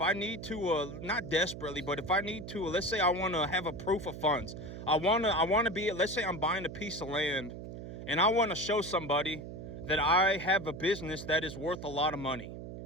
not desperately, but if I need to, let's say I want to have a proof of funds. I want to be, let's say I'm buying a piece of land and I want to show somebody that I have a business that is worth a lot of money.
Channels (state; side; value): noise; right; hum, 10 dB below the sound